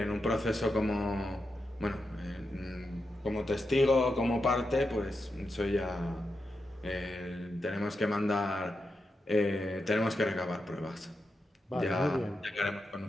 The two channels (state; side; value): normal; both; correlation 0.87